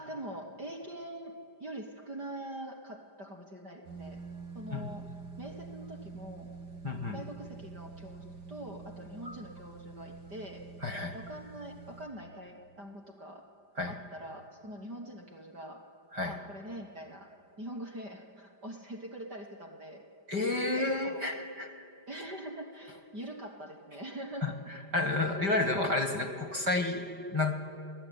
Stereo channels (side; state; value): left; late; 5.0 ms